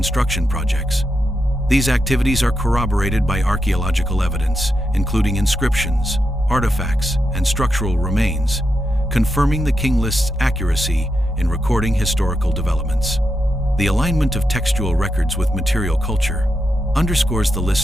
projects. These activities are corroborated by archaeological evidence, including inscriptions, artifacts, and structural remains, confirming the King List's accuracy in recording historical developments. The alignment of textual records with material culture underscores the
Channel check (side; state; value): both; normal; correlation 0.85